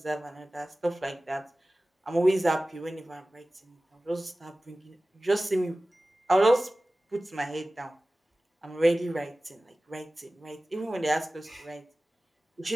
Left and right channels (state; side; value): normal; both; correlation 0.97